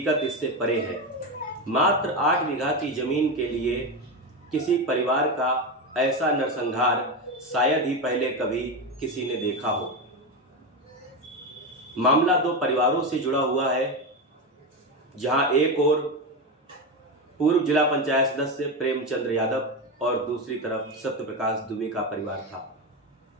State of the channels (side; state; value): both; normal; correlation 0.15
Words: इससे परे है। मात्र 8 बीघा की जमीन के लिए किसी परिवार का ऐसा नरसंहार शायद ही पहले कभी किसी ने देखा हो। मामला 2 परिवारों से जुड़ा हुआ है, जहां एक ओर पूर्व जिला पंचायत सदस्य प्रेमचंद्र यादव और दूसरी तरफ सत्यप्रकाश दुबे का परिवार था।